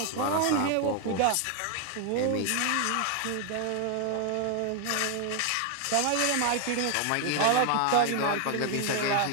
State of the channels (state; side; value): different; both; correlation 0.01